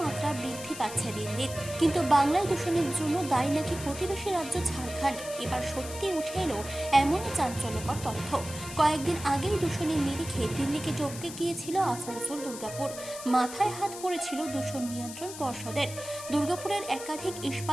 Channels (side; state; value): left; noise; hiss, 11 dB below the sound